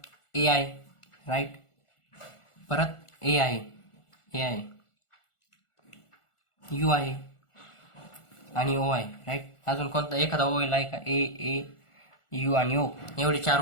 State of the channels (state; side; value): late; right; 1.4 ms